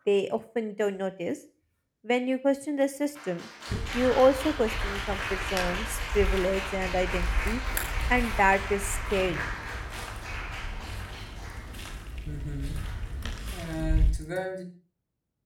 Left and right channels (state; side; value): identical; both; correlation 1.00